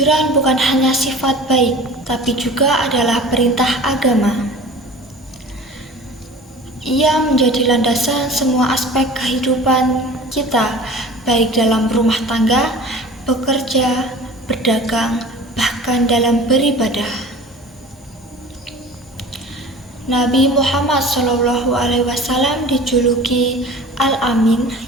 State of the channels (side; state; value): both; normal; correlation 0.41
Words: bukan hanya sifat baik, tapi juga adalah perintah agama. Ia menjadi landasan semua aspek kehidupan kita, baik dalam rumah tangga, bekerja, berdagang, bahkan dalam beribadah. Nabi Muhammad SAW dijuluki Al-Amin